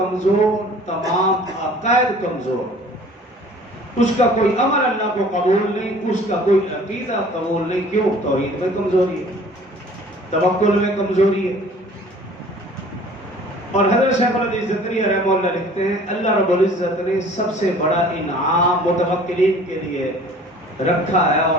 تمام عقائد کمزور، اس کا کوئی عمل اللہ کو قبول نہیں، اس کا کوئی عقیدہ قبول نہیں۔ کیوں؟ توحید میں کمزوری ہے، توکل میں کمزوری ہے۔ اور حضرت شیخ الحدیث زکریا رحمہ اللہ لکھتے ہیں اللہ رب العزت نے سب سے بڑا انعام متوکلین کے لیے رکھا ہے،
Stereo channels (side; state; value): both; normal; correlation 0.49